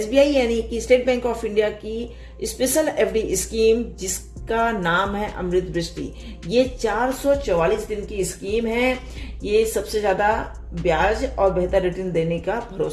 यानी कि स्टेट बैंक ऑफ इंडिया की स्पेशल FD स्कीम, जिसका नाम है अमृत वृष्टि। ये 444 दिन की स्कीम है। ये सबसे ज्यादा ब्याज और बेहतर रिटर्न देने का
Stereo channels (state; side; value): identical; both; correlation 1.00